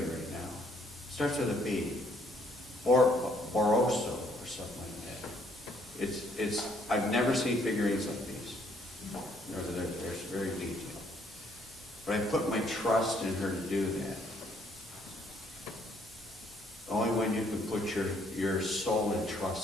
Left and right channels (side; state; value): both; normal; correlation 0.67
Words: it right now. Starts with a B. Or I've never seen figurines like these. They're very detailed. But I put my trust in her to do that. The only one you can put your soul in